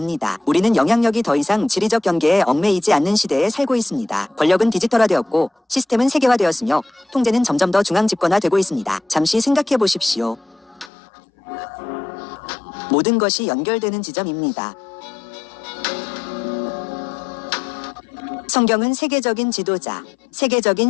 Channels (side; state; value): right; drops out; at 10.9 s